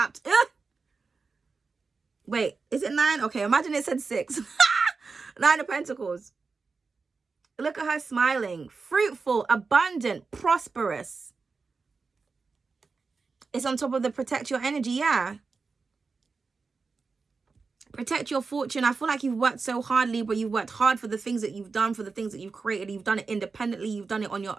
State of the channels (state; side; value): quieter; left; 4.5 dB